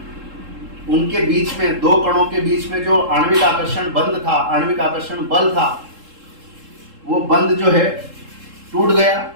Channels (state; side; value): late; left; 3.7 ms